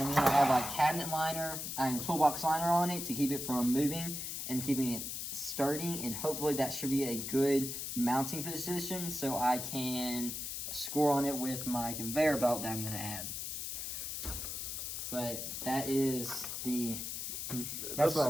to have a cabinet liner and toolbox liner on it to keep it from moving and keeping it sturdy, and hopefully that should be a good mounting position so I can score on it with my conveyor belt that I'm going to add. But that's what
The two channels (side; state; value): left; noise; hiss, 5 dB below the sound